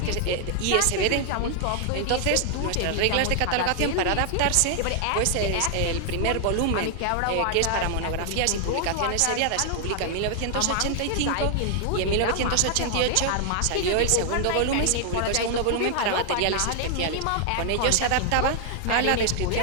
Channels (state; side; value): different; both; correlation 0.00